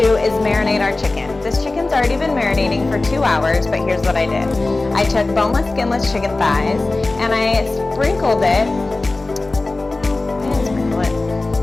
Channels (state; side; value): quieter; right; 3.2 dB